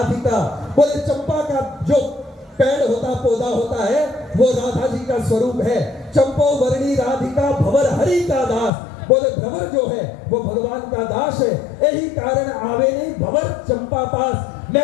बोले चंपा का जो पेड़ होता, पौधा होता है, वो राधा जी का स्वरूप है। चंपो वर्णी राधिका भंवर हरि का दास। बोले भंवर जो है वो भगवान का दास है, यही कारण आवे नहीं भंवर चंपा पास।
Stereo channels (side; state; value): right; drops out; at 8.7 s